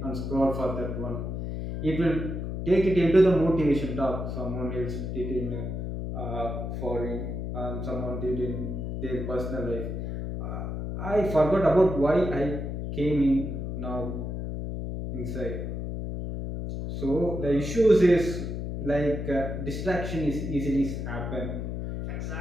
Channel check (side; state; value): left; noise; hum, 4 dB below the sound